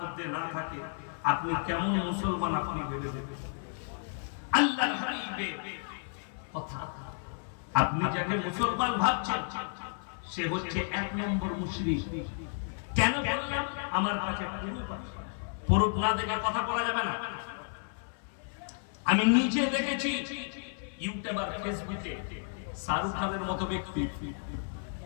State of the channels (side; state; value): right; silent; 56 dB below the other